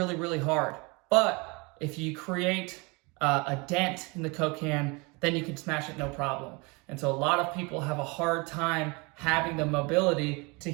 really hard. But if you create a dent in the Coke can, then you can smash it no problem. And so a lot of people have a hard time having the mobility to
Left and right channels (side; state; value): left; quieter; 28.0 dB